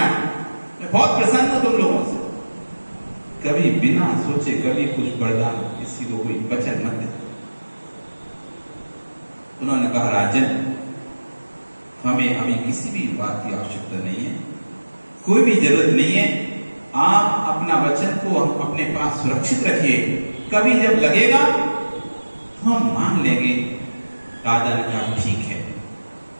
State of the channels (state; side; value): inverted; both; correlation -1.00